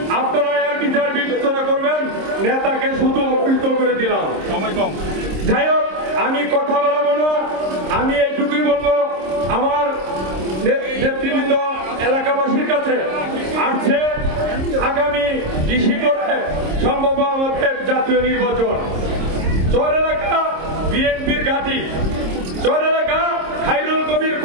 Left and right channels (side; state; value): left; late; 26 ms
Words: আপনারা এর বিচার বিবেচনা করবেন। নেতাকে শুধু অপহৃত করে দিলাম, সময় কম। যাই হোক, আমি কথা বলবো না, আমি এইটুকুই বলবো, আমার নেতৃবৃন্দ এলাকাবাসীর কাছে আসছে আগামী ডিসেম্বরে সম্ভব আমাদের জাতীয় নির্বাচন। চর এলাকা বিএনপির ঘাঁটি, চর এলাকা খায়রুল কবির